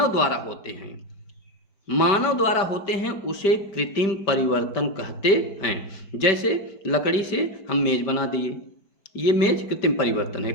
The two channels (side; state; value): right; late; 5.1 ms